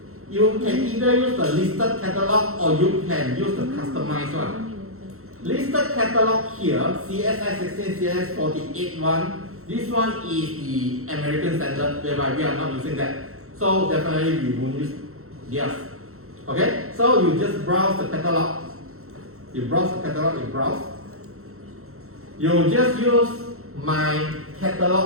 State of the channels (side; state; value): left; late; 0.63 ms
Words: You can either use the listed catalog or you can use the customized one. Listed catalog here, CSI 16, CSI 48 one. This one is the American standard, whereby we are not using that. So definitely we won't use theirs. Okay, so you just browse the catalog. You browse the catalog, you browse. You just use my